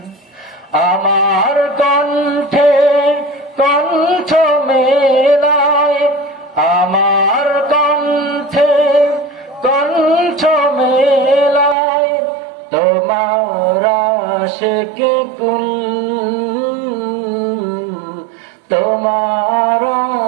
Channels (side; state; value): left; drops out; at 11.8 s